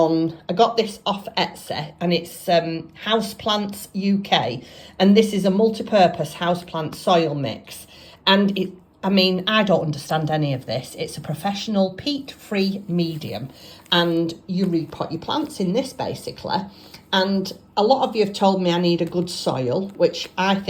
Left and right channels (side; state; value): both; identical; correlation 1.00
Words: got this off Etsy, and it's Houseplants UK. And this is a multi-purpose houseplant soil mix. And I don't understand any of this. It's a professional peat-free medium. And you repot your plants in this basically. And a lot of you have told me I need a good soil, which I